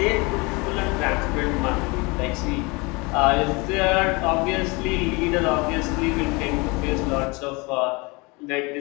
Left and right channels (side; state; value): right; quieter; 27.1 dB